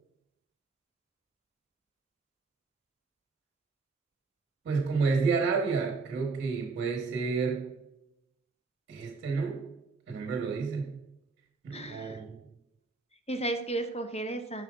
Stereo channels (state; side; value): quieter; left; 4.2 dB